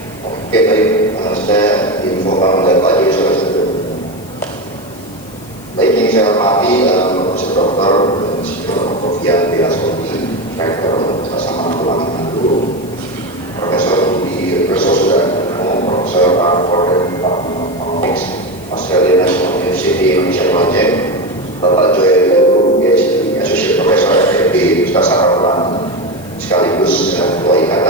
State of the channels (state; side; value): noise; left; hiss, 22 dB below the sound